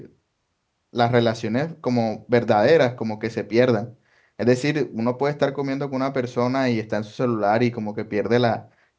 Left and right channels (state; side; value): identical; both; correlation 1.00